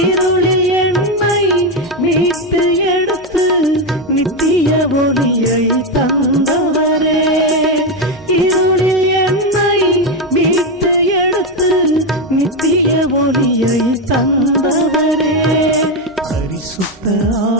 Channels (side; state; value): both; normal; correlation 0.09